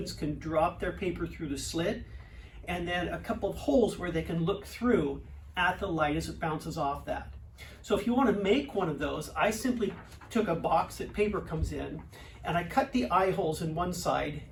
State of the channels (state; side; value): identical; both; correlation 1.00